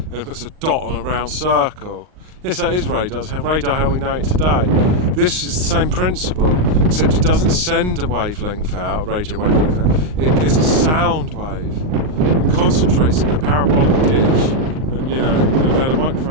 it puts a dot on a round circle. Yes, that is radar. It's radar how we know it today. This is the same principle, except it doesn't send a wavelength out, a radio wavelength out. It gets a sound wave and concentrates it in a parabolic dish. And you know, they had a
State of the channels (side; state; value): left; late; 39 ms